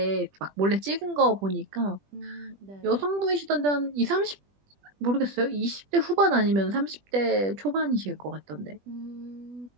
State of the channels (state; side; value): late; left; 20 ms